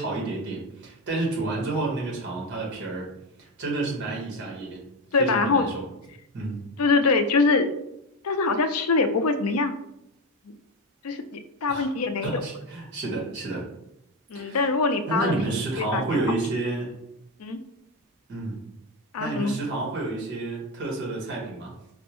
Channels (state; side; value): normal; both; correlation 0.15